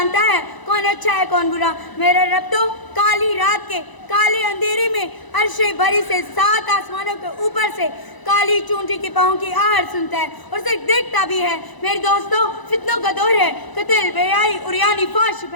ہے کون اچھا ہے کون برا. میرا رب تو کالی رات کے کالے اندھیرے میں عرش بری سے 7 آسمانوں کے اوپر سے کالی چونٹی کے پاؤں کی آہٹ سنتا ہے اور اسے دیکھتا بھی ہے. میرے دوستوں، فتنوں کا دور ہے. قتل، بے حیائی، عریانی، فحش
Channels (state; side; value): late; right; 1.0 ms